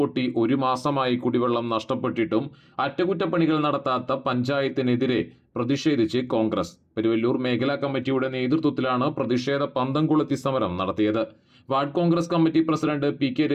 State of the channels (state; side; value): identical; both; correlation 1.00